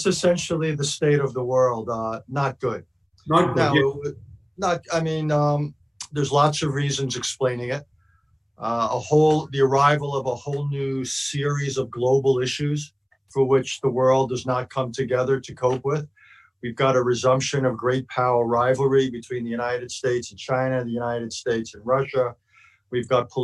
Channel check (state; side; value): identical; both; correlation 1.00